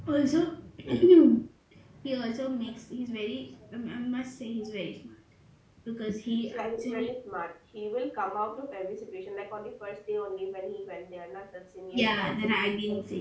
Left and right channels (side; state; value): both; identical; correlation 1.00